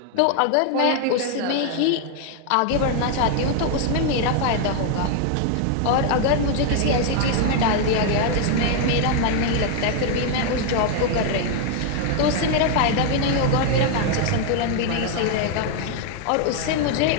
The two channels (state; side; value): different; both; correlation 0.00